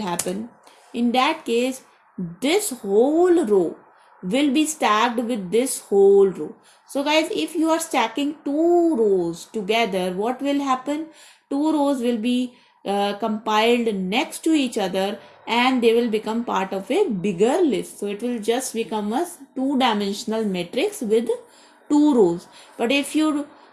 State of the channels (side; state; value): both; identical; correlation 1.00